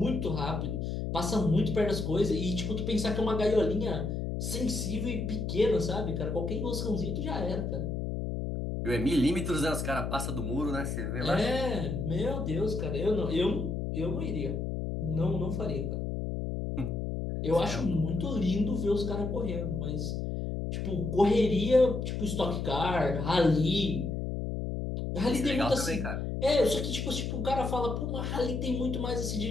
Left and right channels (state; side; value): noise; left; hum, 2 dB below the sound